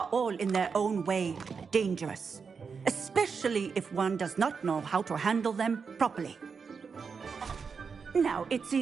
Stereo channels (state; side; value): quieter; left; 5.6 dB